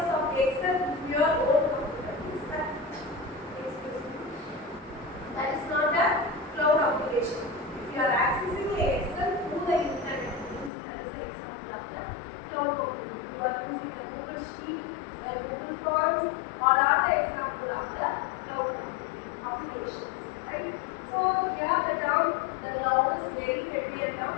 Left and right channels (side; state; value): right; drops out; at 10.7 s